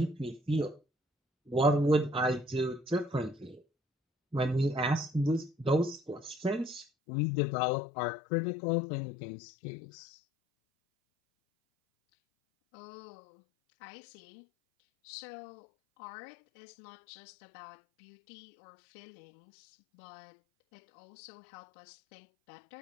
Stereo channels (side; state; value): right; drops out; at 6.9 s